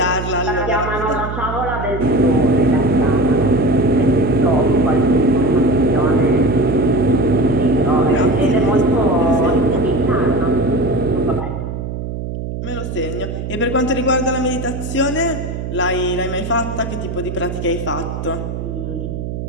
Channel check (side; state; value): right; noise; hum, 6 dB below the sound